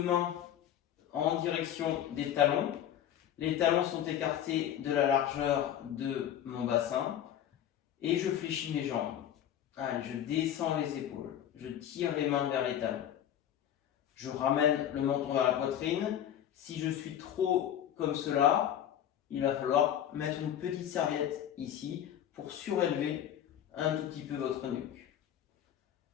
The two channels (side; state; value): right; quieter; 10.5 dB